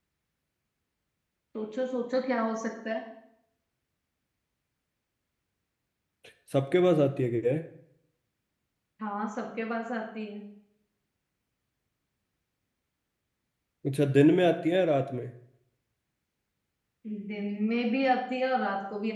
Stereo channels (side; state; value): both; identical; correlation 1.00